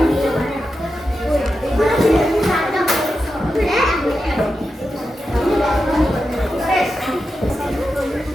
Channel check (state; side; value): normal; both; correlation 0.89